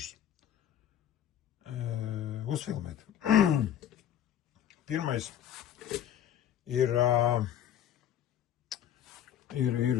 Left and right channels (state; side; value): quieter; right; 10.4 dB